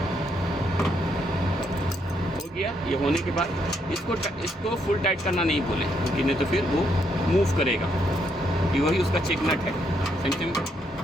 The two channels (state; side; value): normal; both; correlation 0.75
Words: हो गया, ये होने के बाद इसको फुल टाइट करना नहीं बोले, क्योंकि नहीं तो फिर वो मूव करेगा, क्योंकि वही उसका चेक नट है, सेम